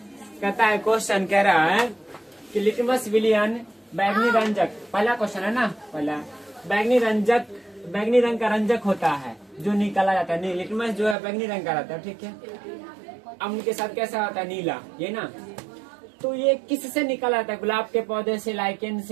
कहता है क्वेश्चन कह रहा है कि लिटमस विलियन बैगनी रंजक, पहला क्वेश्चन है ना, पहला बैगनी रंग का रंजक होता है जो निकाला जाता है। नहीं, लिटमस जो है बैगनी रंग का रहता है, ठीक है। अम्ल के साथ कैसा होता है, नीला, ये ना। तो ये किससे निकाला जाता है, गुलाब के पौधे से, लाइकेन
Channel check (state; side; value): drops out; left; at 11.2 s